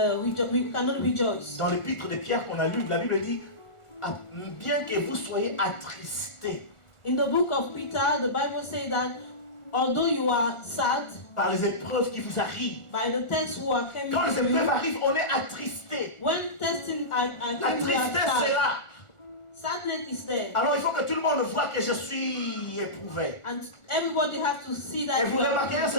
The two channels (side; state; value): right; late; 1.4 ms